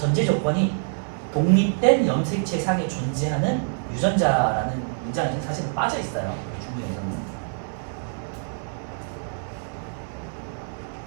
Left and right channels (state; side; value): silent; left; 62 dB below the other